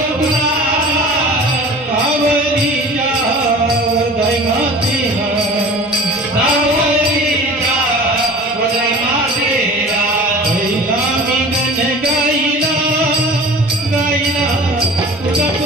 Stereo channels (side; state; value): both; normal; correlation 0.40